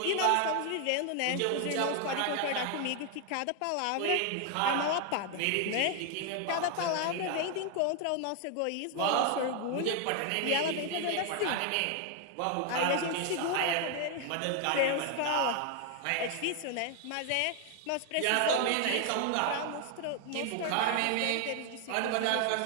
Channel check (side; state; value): both; different; correlation 0.00